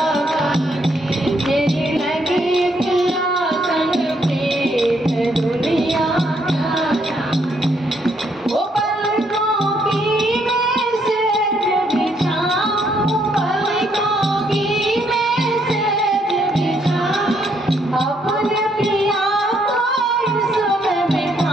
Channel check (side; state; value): both; normal; correlation 0.72